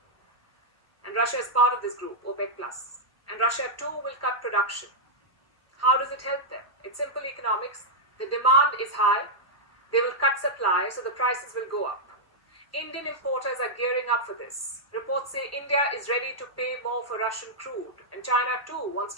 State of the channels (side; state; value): right; late; 1.0 ms